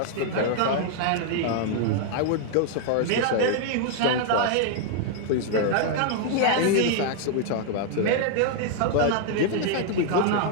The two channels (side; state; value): both; different; correlation 0.00